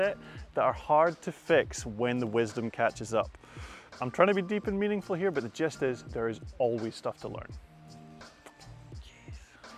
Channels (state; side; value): identical; both; correlation 1.00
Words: that are hard to fix when the wisdom catches up. I'm trying to be deep and meaningful here, but the gist is there is always stuff to learn.